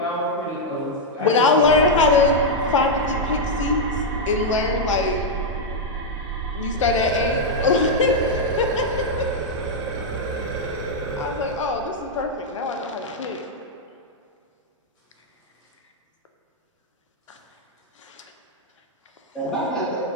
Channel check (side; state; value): both; normal; correlation -0.02